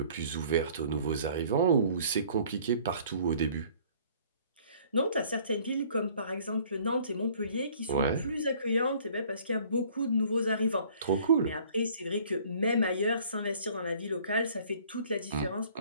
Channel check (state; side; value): inverted; both; correlation -0.55